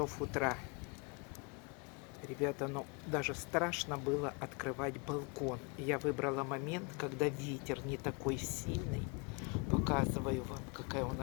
утра. Ребята, ну даже страшно было открывать балкон. Я выбрала момент, когда ветер не такой сильный. Показываю вам, какая у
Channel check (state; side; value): quieter; right; 31.4 dB